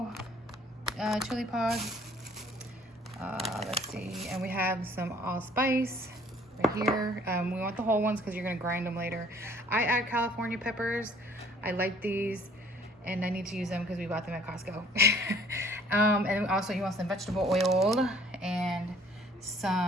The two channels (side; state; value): both; normal; correlation 0.57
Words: chili pods. Let's see, and we have some allspice right here. We want the whole ones because you're gonna grind them later. I add California peppers. I like these, and I need to use them because we bought them at Costco. And also you want some vegetable oil and